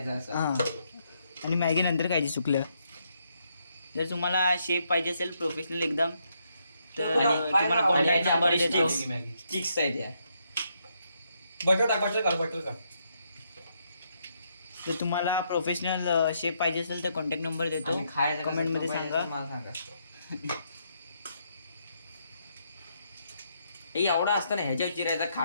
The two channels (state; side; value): inverted; both; correlation -0.76